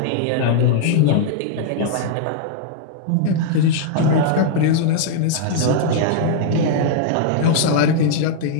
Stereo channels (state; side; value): different; both; correlation -0.01